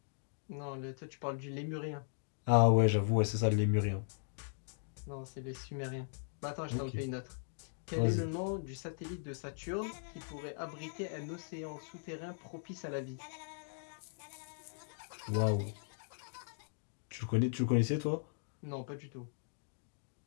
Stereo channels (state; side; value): silent; right; digital silence